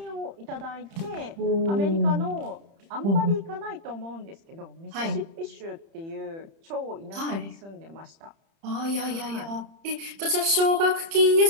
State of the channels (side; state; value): left; late; 30 ms